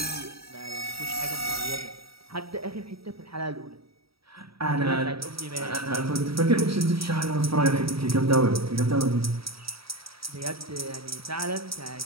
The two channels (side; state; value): left; late; 0.76 ms